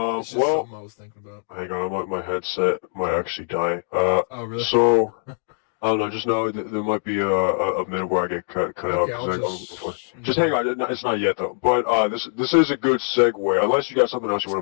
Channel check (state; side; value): silent; right; 64 dB below the other